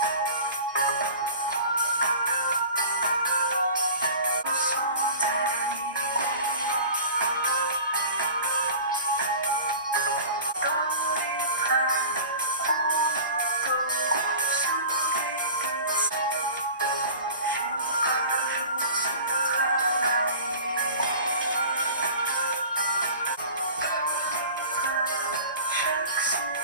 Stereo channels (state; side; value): inverted; both; correlation -0.39